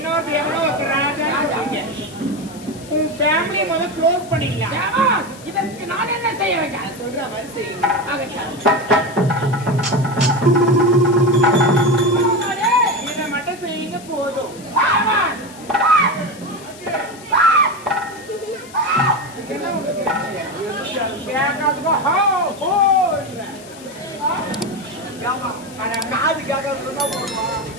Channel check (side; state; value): left; noise; hiss, 20 dB below the sound